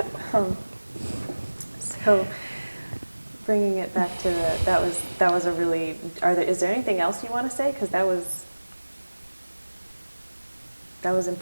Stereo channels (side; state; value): both; inverted; correlation -1.00